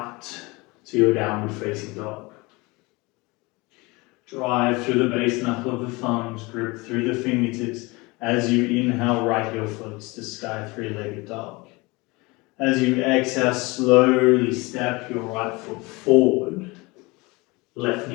to your downward facing dog. Drive through the base knuckle of the thumbs, grip through the fingertips. As you inhale, right heel floats to sky three-legged dog. As you exhale, slowly step your right foot forward. Left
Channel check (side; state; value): right; quieter; 24.7 dB